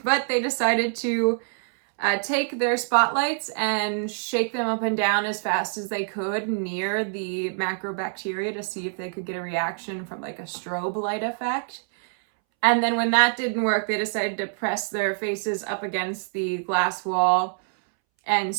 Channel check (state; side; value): silent; left; 61 dB below the other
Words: decided to take their spotlights and shake them up and down as fast as they could near the macrobacteria to see if they could get a reaction from like a strobe light effect. And then when that didn't work, they decided to press their faces up against the glass wall and